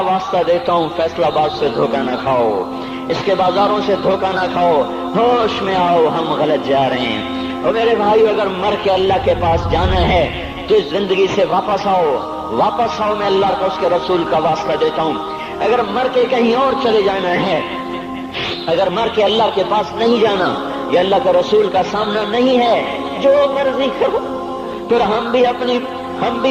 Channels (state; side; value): identical; both; correlation 1.00